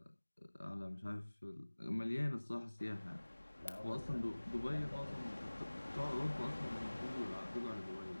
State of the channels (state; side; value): inverted; both; correlation -1.00